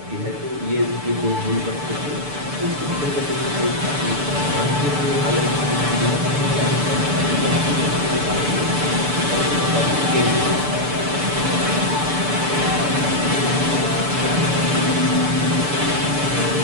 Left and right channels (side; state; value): left; late; 6.9 ms